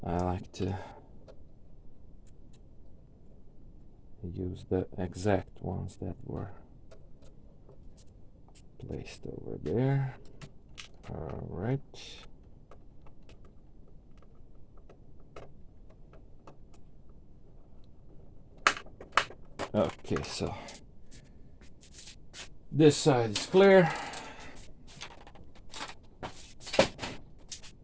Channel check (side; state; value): both; identical; correlation 1.00